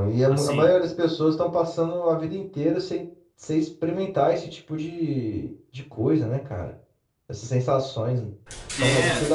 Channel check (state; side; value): identical; both; correlation 1.00